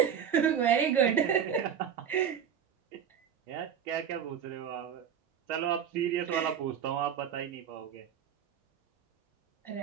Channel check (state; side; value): quieter; left; 8.3 dB